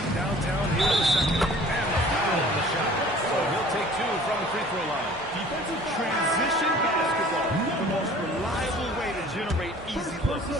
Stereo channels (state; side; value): normal; both; correlation 0.49